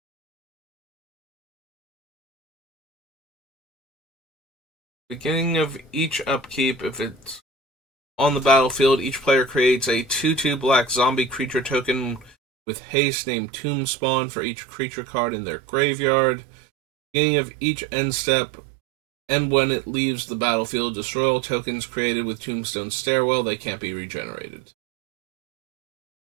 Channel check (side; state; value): left; drops out; at 12.4 s